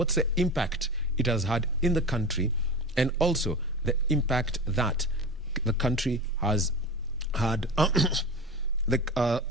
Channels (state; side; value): normal; both; correlation 0.29